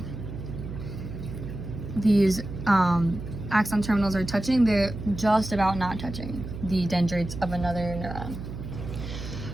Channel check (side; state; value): right; noise; hum, 9 dB below the sound